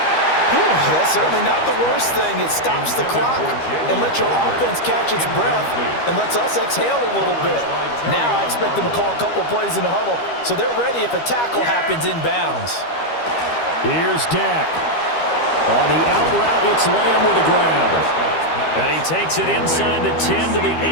That's certainly not the worst thing. It stops the clock and lets your offense catch its breath and lets us exhale a little bit. Now I expect them to call a couple plays in the huddle so they're ready if a tackle happens inbounds. Here's Dak. On the out route, it's Lamb with a grab. And he takes it inside the 10 to the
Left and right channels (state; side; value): late; right; 13 ms